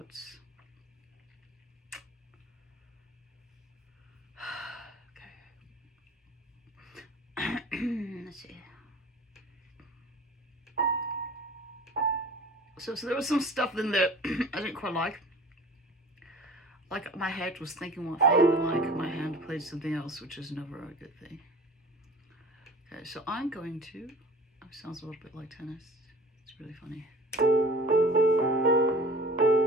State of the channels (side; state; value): both; normal; correlation 0.43